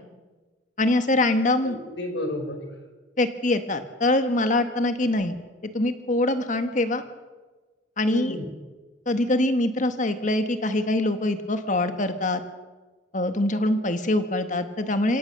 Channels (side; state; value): both; normal; correlation 0.46